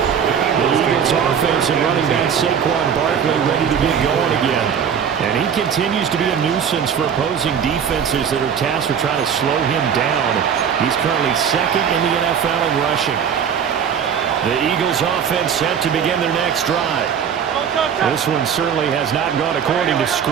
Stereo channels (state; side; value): quieter; left; 7.7 dB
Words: The Eagles offense and running back Saquon Barkley ready to get going again. And he continues to be a nuisance for opposing defenses that are tasked with trying to slow him down. He's currently second in the NFL in rushing. The Eagles offense set to begin their next drive. This one certainly has not gone according to